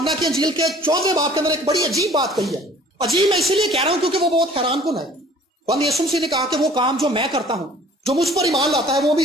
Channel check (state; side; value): normal; both; correlation 0.51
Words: کی انجیل کے 14 باب کے اندر ایک بڑی عجیب بات کہی ہے. عجیب میں اسی لیے کہہ رہا ہوں کیونکہ وہ بہت حیران کن ہے. بند یسوع مسیح نے کہا کہ وہ کام جو میں کرتا ہوں، جو مجھ پر ایمان لاتا ہے